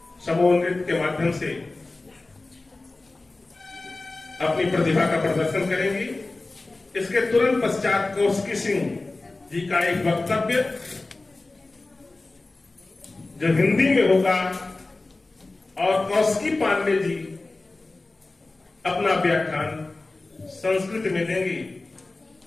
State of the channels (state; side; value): quieter; right; 3.2 dB